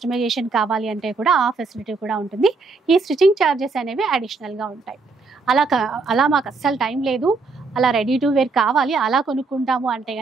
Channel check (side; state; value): left; quieter; 4.1 dB